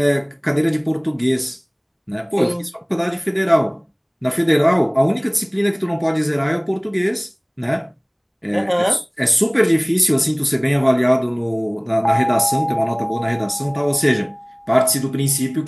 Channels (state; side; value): identical; both; correlation 1.00